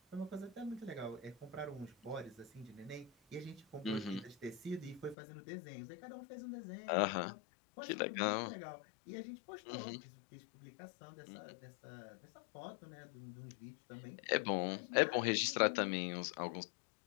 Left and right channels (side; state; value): right; drops out; at 5.2 s